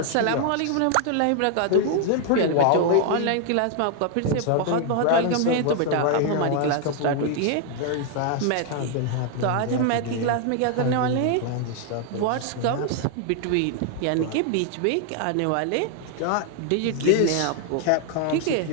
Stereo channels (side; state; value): both; different; correlation 0.00